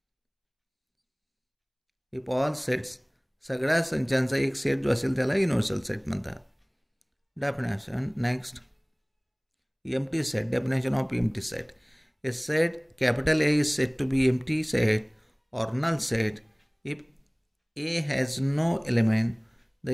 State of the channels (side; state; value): both; identical; correlation 1.00